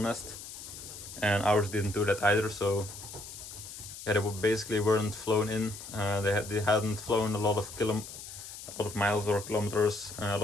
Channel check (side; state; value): left; noise; hiss, 12 dB below the sound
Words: nest, and ours didn't do that either. So yeah, they basically weren't flown in. They hadn't flown a lot of miles or kilometers, a